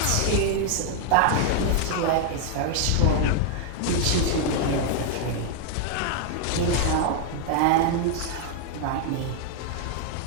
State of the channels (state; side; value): different; both; correlation 0.00